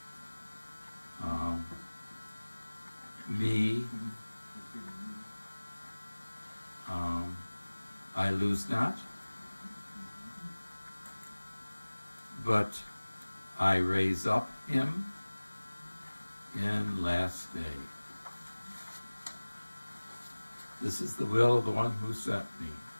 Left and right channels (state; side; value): inverted; both; correlation -1.00